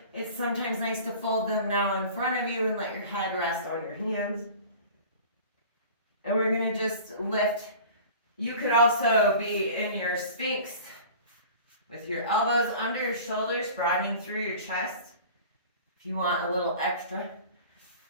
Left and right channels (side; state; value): both; inverted; correlation -0.41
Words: it's sometimes nice to fold them now in front of you and let your head rest on your hands. And we're going to just lift You could also be in your Sphinx with your elbows under your shoulders, broadening through your chest if you want a little extra.